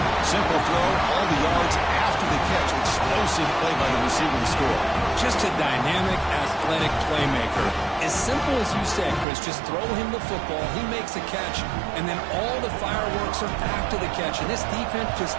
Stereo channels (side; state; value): left; drops out; at 9.2 s